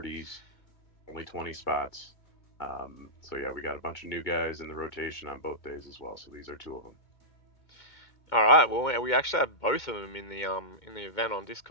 only 20 spots. So yeah, we got a bunch of new guys in the rotation on both days as well. So these are 2 of them. All right. Well, we actually have both of them in the event on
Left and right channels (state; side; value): late; right; 2.2 ms